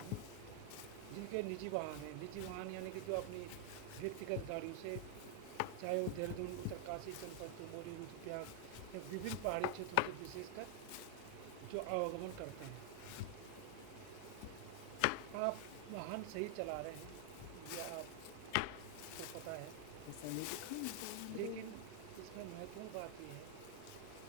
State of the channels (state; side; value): different; both; correlation 0.00